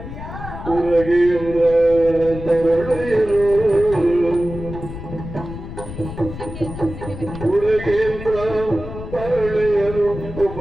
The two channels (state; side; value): noise; left; rumble, 10 dB below the sound